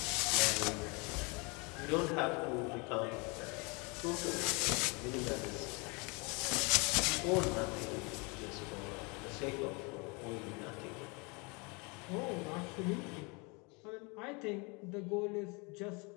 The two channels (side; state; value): right; quieter; 29.8 dB